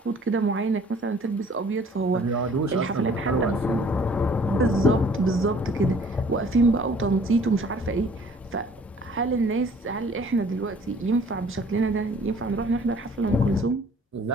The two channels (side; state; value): both; normal; correlation 0.54